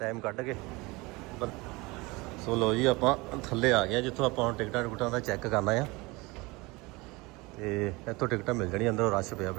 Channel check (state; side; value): quieter; left; 23.8 dB